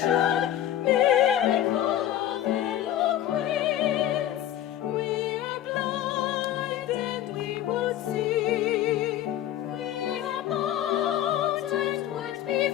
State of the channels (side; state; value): right; quieter; 11.9 dB